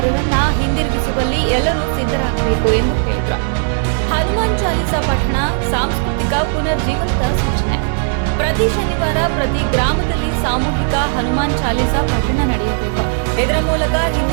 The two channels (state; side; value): silent; left; 66 dB below the other